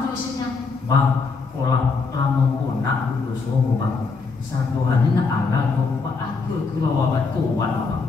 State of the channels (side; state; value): right; quieter; 4.5 dB